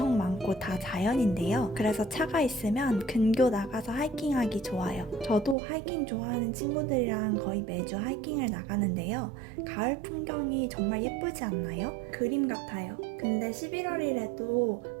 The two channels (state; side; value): drops out; left; at 5.6 s